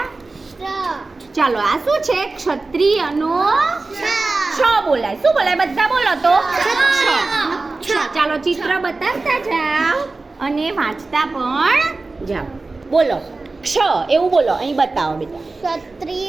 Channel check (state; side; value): quieter; left; 3.5 dB